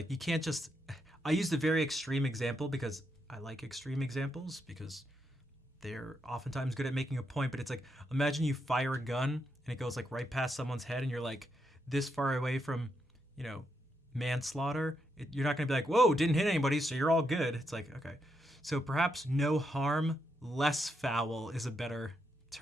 you can't just. I used a very extreme example because I like extreme examples because they're oftentimes good at making a point. But it's like imagine you fire a gun and it goes like right past someone's head, and you're like this far away from, you know, manslaughter. You're not going to be like, whoa, didn't hit anybody, so you're all good. It's like, okay. So perhaps no harm, less foul is a better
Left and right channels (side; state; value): both; normal; correlation 0.81